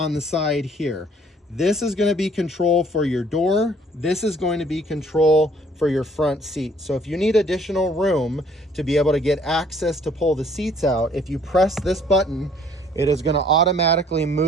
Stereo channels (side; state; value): both; normal; correlation 0.59